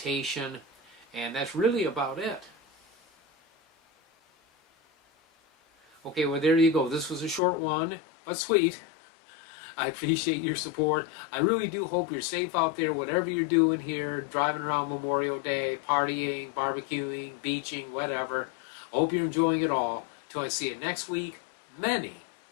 and that's really about it. Okay, well there you go. This was a short one, but sweet. I appreciate your support. I really do hope you're safe out there, whatever you're doing here, driving around Memorial Day, partying, barbecuing, beaching, whatever. I hope you're enjoying it all. Till I see you next week, many,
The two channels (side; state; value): right; drops out; at 7.4 s